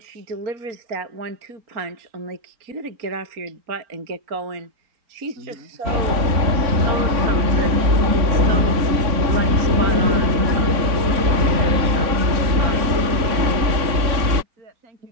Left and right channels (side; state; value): left; late; 3.6 ms